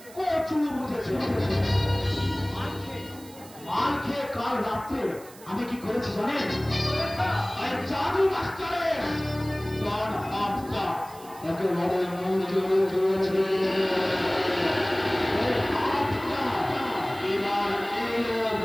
কচু বুঝেছেন। মাল খেয়ে কাল রাত্রে আমি কি করেছি জানেন? জাদু মাস্টারের তার হাতটা একেবারে মুজে দিয়েছে। এবার এলো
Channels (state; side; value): noise; right; hiss, 21 dB below the sound